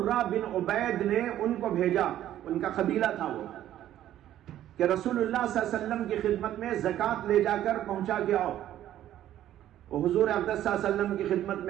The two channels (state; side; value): quieter; left; 12.3 dB